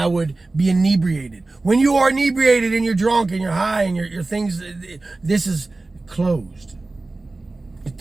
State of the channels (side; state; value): left; quieter; 3.2 dB